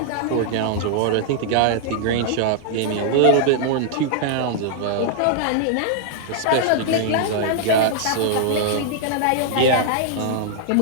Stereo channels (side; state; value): both; different; correlation -0.01